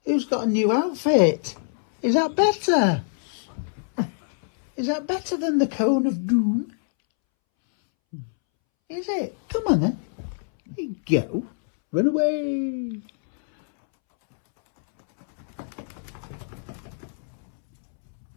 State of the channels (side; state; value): right; silent; 62 dB below the other